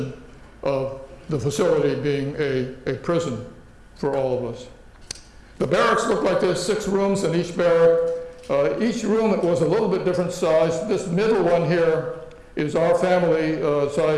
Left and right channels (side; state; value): both; identical; correlation 1.00